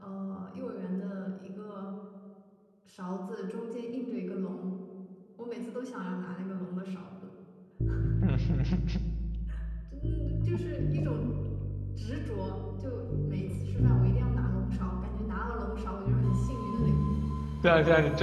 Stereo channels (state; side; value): identical; both; correlation 1.00